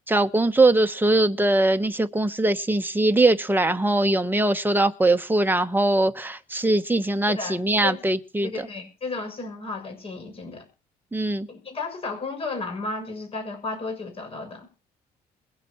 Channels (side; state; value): both; normal; correlation 0.75